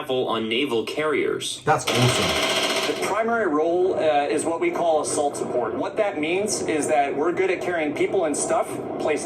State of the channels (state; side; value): identical; both; correlation 1.00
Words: on naval carriers. That's awesome. The primary role is what we call assault support. What that means is that we're good at carrying people and stuff